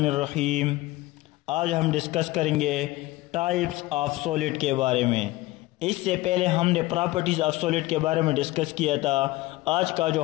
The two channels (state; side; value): quieter; right; 19.0 dB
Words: आज हम डिस्कस करेंगे टाइप्स ऑफ सॉलिड के बारे में। इससे पहले हमने प्रॉपर्टीज़ ऑफ सॉलिड के बारे में डिस्कस किया था। आज का जो